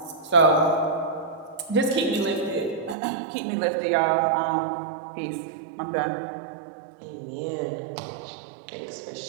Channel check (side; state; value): left; drops out; at 3.0 s